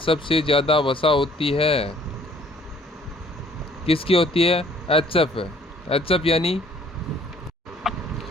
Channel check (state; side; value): normal; both; correlation 0.59